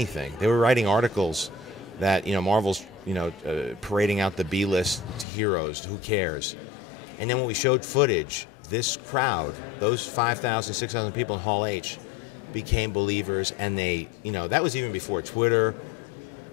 They were writing articles that Marvel's parading out the B-list heroes. Who cares? And then when we showed footage, this crowd, those 5,000, 6,000 people in Hall H, became believers, and they, that was even before Twitter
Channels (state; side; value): drops out; right; at 5.2 s